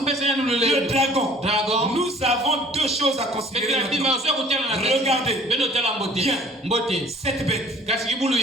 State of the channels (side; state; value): both; normal; correlation 0.52